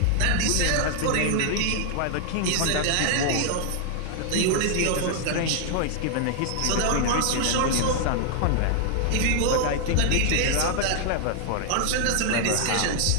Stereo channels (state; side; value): different; both; correlation 0.00